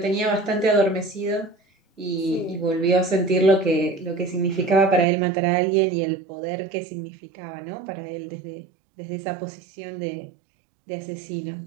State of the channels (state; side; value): drops out; left; at 5.1 s